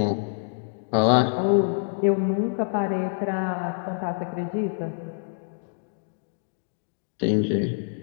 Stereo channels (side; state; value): right; silent; digital silence